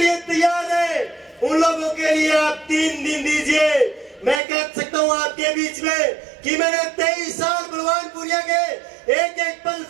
तैयार है उन लोगों के लिए आप 3 दिन दीजिए। मैं कह सकता हूँ आपके बीच में कि मैंने 23 साल बलवान पुनिया के एक एक पल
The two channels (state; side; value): drops out; left; at 4.4 s